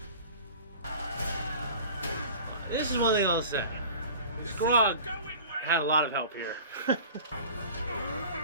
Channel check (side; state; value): both; inverted; correlation -0.42